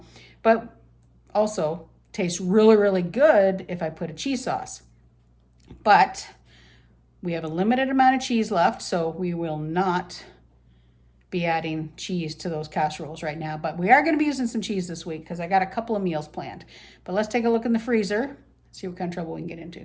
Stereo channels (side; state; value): both; identical; correlation 1.00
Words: But also, tastes really, really good if I put a cheese sauce. But we have a limited amount of cheese left, so we will not be adding cheese to those casseroles right now. But we are going to be using some cheese this week because I got a couple of meals planned. But let's take a look in the freezer, see what kind of trouble we can get